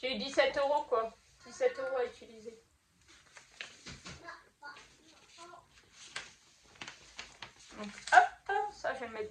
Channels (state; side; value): identical; both; correlation 1.00